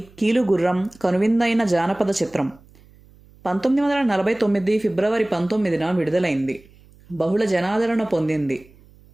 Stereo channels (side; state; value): right; noise; hum, 27 dB below the sound